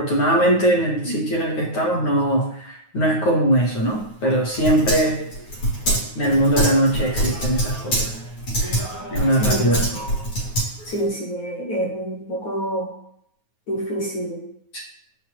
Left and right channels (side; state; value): right; late; 9.4 ms